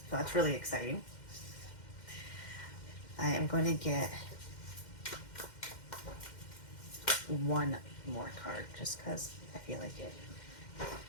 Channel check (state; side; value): late; right; 2.1 ms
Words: that's really exciting. I am going to get one more card just because I feel like it.